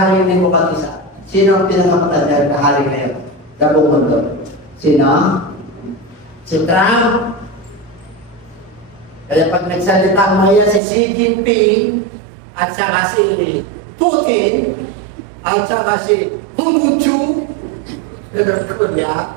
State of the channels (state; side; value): drops out; left; at 10.8 s